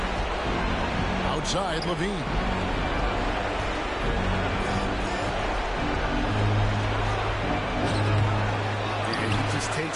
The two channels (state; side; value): identical; both; correlation 1.00